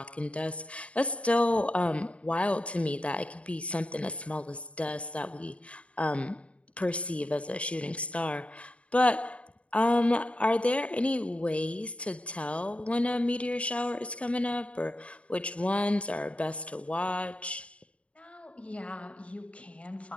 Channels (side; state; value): right; late; 0.063 ms